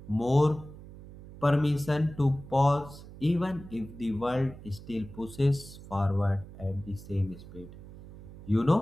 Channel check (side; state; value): right; noise; hum, 16 dB below the sound